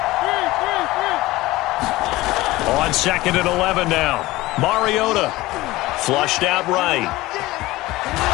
On 2nd and 11 now. Mariota flushed out right.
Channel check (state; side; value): quieter; right; 18.8 dB